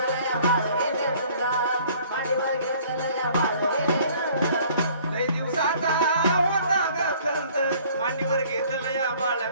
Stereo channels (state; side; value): inverted; both; correlation -0.55